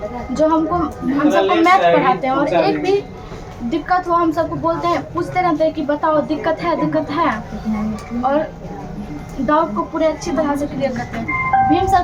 जो हम सबको मैथ पढ़ाते हैं, और एक भी दिक्कत हो हम सबको बोलते हैं, पूछते रहते हैं कि बताओ दिक्कत है, और डाउट को पूरे अच्छी तरह से क्लियर करते हैं। भीम सर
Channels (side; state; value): both; identical; correlation 1.00